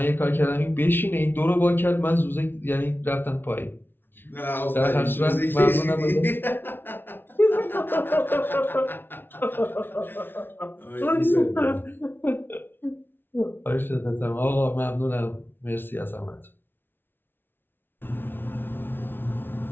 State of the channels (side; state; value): right; late; 0.10 ms